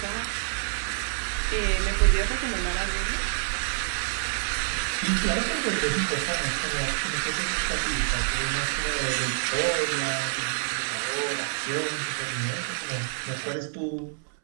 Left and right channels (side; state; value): left; silent; 59 dB below the other